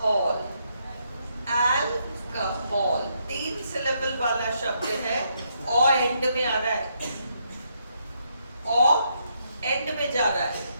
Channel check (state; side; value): inverted; both; correlation -0.76